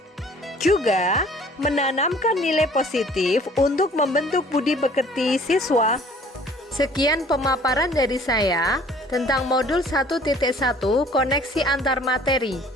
Juga menanamkan nilai positif untuk membentuk budi pekerti siswa. Sekian pemaparan dari saya tentang modul 1.1 koneksi antar materi.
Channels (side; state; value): both; normal; correlation 0.53